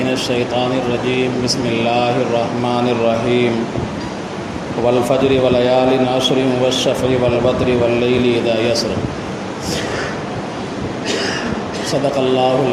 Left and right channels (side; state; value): both; identical; correlation 1.00